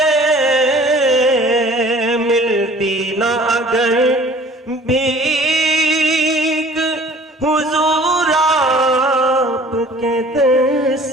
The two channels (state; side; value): normal; both; correlation 0.50